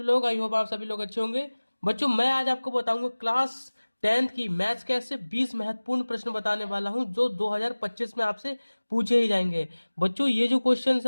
लोग। आई होप आप सभी लोग अच्छे होंगे। बच्चों, मैं आज आपको बताऊंगा क्लास 10th की मैथ्स के ऐसे 20 महत्वपूर्ण प्रश्न बताने वाला हूं जो 2025 में आपसे पूछे ही जाएंगे। बच्चों, ये जो क्वेश्चंस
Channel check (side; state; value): both; inverted; correlation -1.00